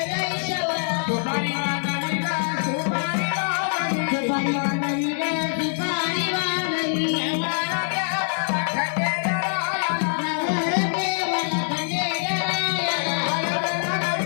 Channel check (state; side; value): silent; right; digital silence